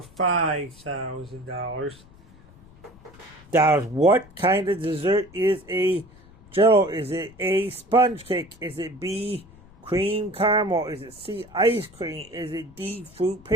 What kind of dessert is a Jello? Is it A, sponge cake? Is it B, cream caramel? Is it C, ice cream? Is it D, fruit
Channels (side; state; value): left; noise; rumble, 24 dB below the sound